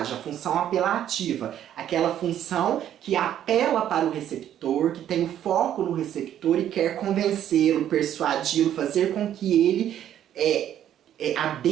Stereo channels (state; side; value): quieter; left; 10.8 dB